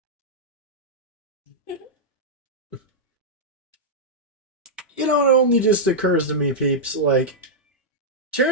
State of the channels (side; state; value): both; normal; correlation -0.07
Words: You know, it only just occurs to me, peeps, like,